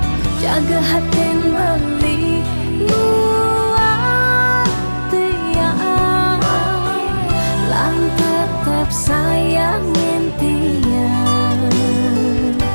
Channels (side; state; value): both; inverted; correlation -1.00